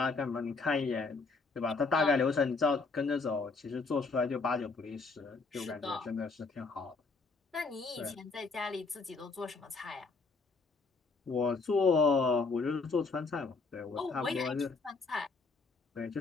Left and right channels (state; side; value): quieter; right; 4.1 dB